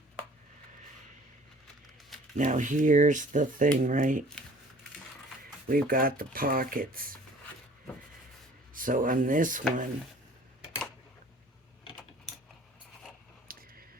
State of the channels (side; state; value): both; normal; correlation 0.51